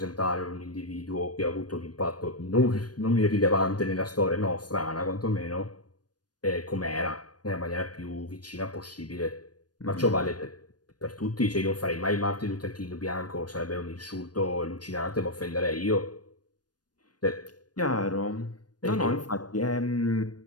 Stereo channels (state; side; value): late; right; 0.69 ms